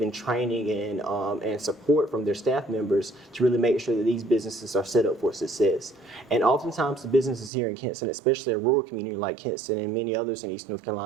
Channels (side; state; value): left; drops out; at 7.5 s